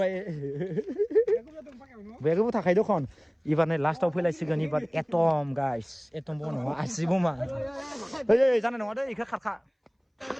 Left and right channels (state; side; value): identical; both; correlation 1.00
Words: बेगबो थाखाय दखन एबार नै लास्टआव फैलायसिगोन एबार एटम गाइस एटम बो नङा आसि बमा ओइ जानाय नङा दे इखो खारखा